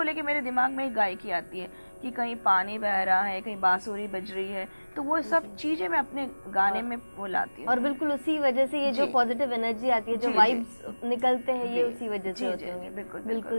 लेकर मेरे दिमाग में एक गायकी आती है कि कहीं पानी बह रहा है, कहीं बांसुरी बज रही है, तो वो सब चीजें मैं अपने गाने में वो लाती हूँ। और बिल्कुल उसी वजह से ये जो पॉजिटिव एनर्जी आती है, जो वाइब्स निकलते हैं, ये उसी वजह से होते हैं।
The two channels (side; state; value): both; inverted; correlation -1.00